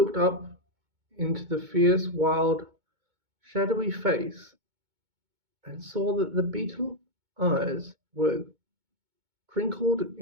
up into the fierce, wild, shadowy face and saw that the beetle eyes were crinkled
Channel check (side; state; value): left; late; 2.2 ms